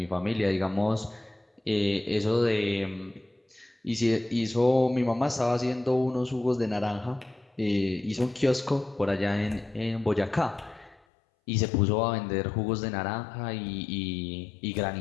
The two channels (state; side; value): drops out; right; at 11.0 s